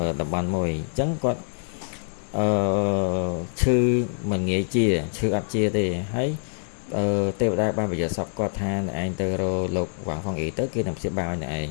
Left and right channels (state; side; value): silent; right; 62 dB below the other